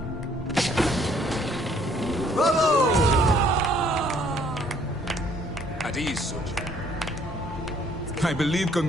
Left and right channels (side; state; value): both; normal; correlation 0.63